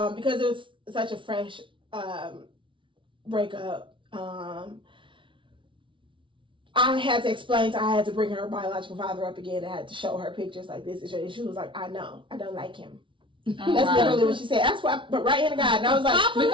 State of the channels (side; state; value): left; late; 0.25 ms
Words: because it was such a fresh breakup, I had to explain I had to bring her biological father up again. I had to show her pictures like this. And she was like, I know. I don't like him. That's literally what she said. That's why, but right in the God. And I was like,